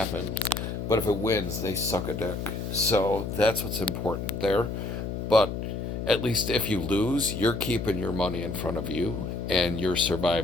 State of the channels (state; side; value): noise; left; hum, 4 dB below the sound